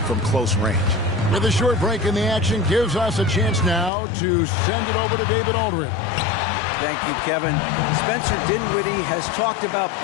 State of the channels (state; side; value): drops out; right; at 3.9 s